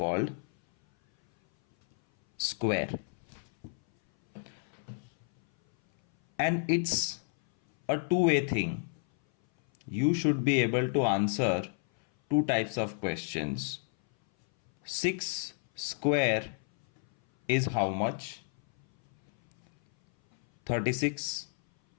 square. And it's a two-way thing. You should be able to answer two types of questions. 6 square is how much? 36.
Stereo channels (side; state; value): right; silent; 57 dB below the other